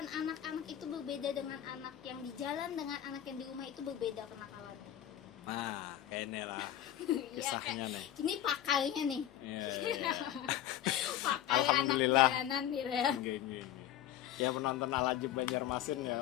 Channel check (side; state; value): right; quieter; 11.6 dB